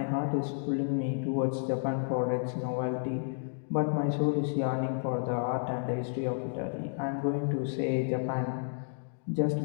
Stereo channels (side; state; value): right; silent; digital silence